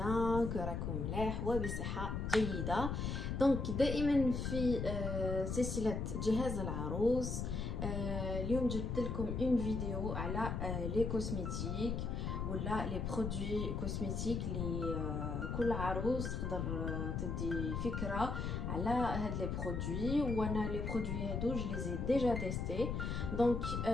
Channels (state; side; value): noise; left; rumble, 2 dB below the sound